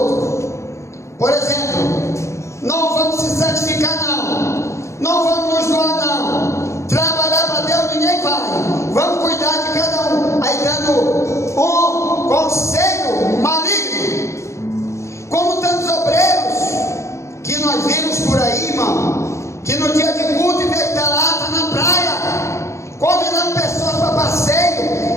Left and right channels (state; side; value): late; right; 0.14 ms